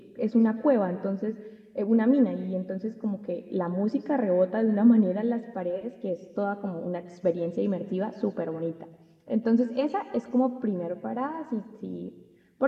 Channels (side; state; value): both; identical; correlation 1.00